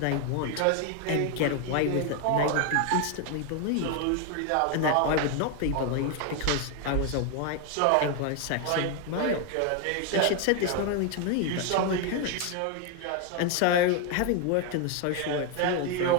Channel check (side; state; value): both; different; correlation 0.01